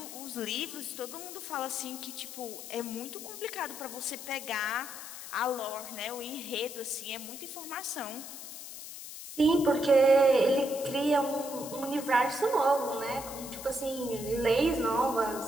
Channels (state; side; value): noise; left; hiss, 11 dB below the sound